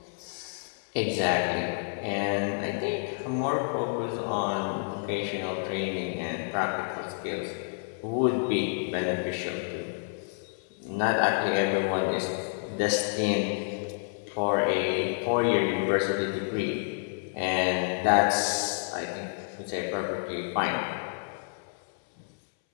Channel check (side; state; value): right; silent; 58 dB below the other